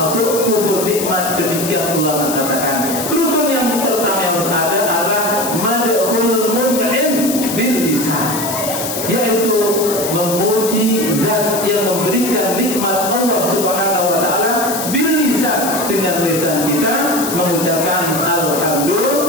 kufur nikmat. Demikian ulama katakan. Rukun yang pertama yang harus ada adalah madhul mun'im bil lisan, yaitu memuji zat yang memberikan nikmat Allah Subhanahu wa taala bil lisan, dengan lisan kita mengucapkan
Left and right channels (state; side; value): noise; left; hiss, 5 dB below the sound